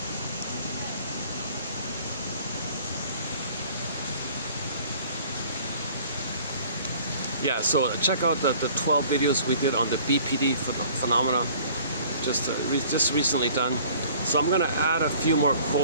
Yeah, so check out the 12 videos we did on the BPD phenomena, just recently done. So I'm gonna add a few more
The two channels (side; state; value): both; inverted; correlation -0.52